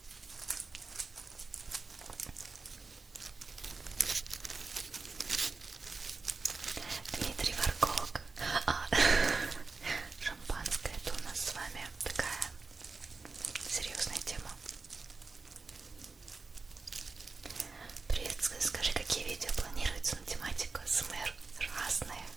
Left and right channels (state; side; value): quieter; left; 4.1 dB